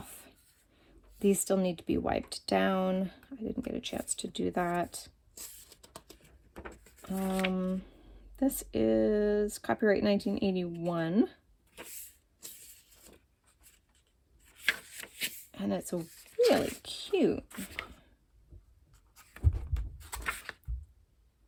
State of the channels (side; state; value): both; identical; correlation 1.00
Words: These still need to be wiped down. I didn't get a chance to do that. This is copyright 1981. And it's really cute.